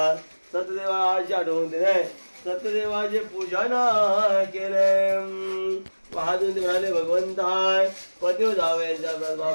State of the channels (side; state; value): both; inverted; correlation -1.00